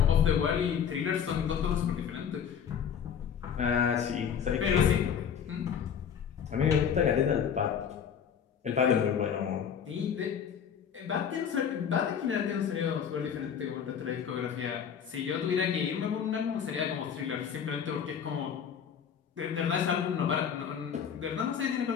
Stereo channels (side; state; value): right; quieter; 7.8 dB